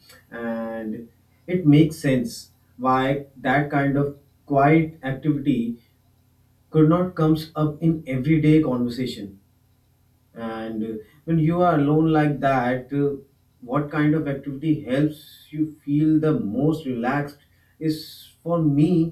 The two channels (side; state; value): both; identical; correlation 1.00